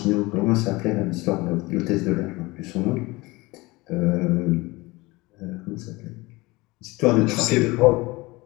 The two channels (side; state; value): right; quieter; 22.4 dB